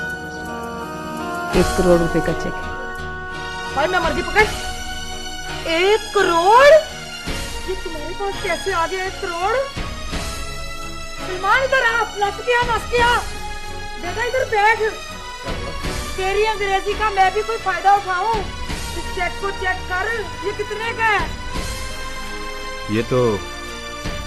1 करोड़ रुपए का चेक है। भाई मैं मर्जी पकड़। 1 करोड़? ये तुम्हारे पास कैसे आ गया 1 करोड़? सलमान इधर आ। नस गया। बेटा इधर बैठ। तेरी अंग्रेजी का मैं भी कोई फायदा उठाऊं? इस चेक को चेक कर, ये कितने का है? ये तो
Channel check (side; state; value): both; identical; correlation 1.00